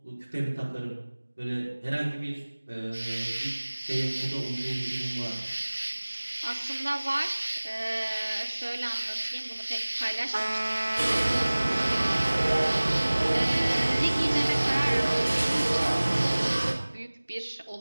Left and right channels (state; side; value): inverted; both; correlation -1.00